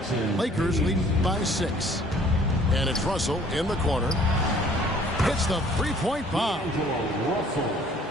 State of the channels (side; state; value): both; normal; correlation 0.56